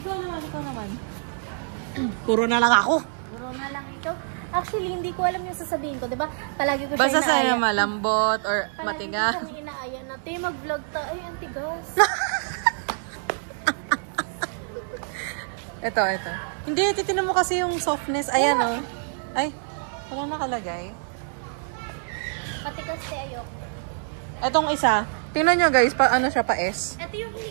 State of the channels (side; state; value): left; silent; 61 dB below the other